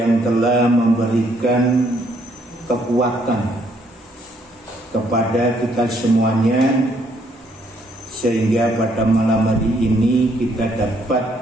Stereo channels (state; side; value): normal; both; correlation 0.69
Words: telah memberikan kekuatan kepada kita semuanya sehingga pada malam hari ini kita